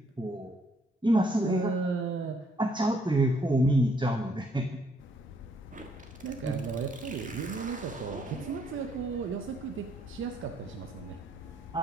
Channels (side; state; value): both; normal; correlation 0.69